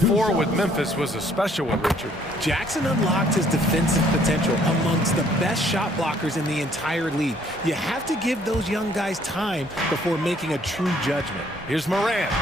with Memphis was a special one, Richard. Jackson unlocked his defensive potential amongst the best shot blockers in the entire league. You have to give those young guys time before making a true judgment. Here's Morant.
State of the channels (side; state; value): both; normal; correlation 0.63